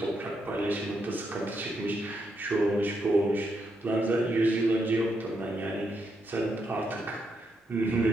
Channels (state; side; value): normal; both; correlation 0.80